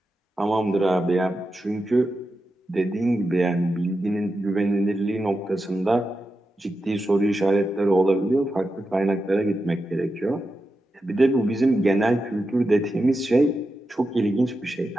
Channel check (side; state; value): both; normal; correlation 0.89